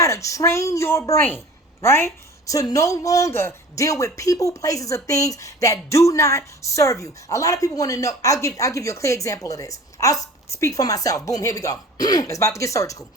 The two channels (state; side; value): normal; both; correlation 0.43